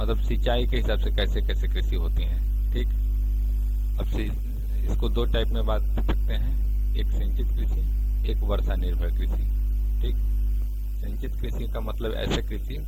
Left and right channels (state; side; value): identical; both; correlation 1.00